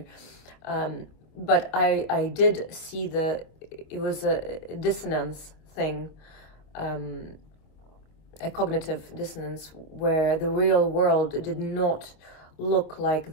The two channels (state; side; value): late; right; 25 ms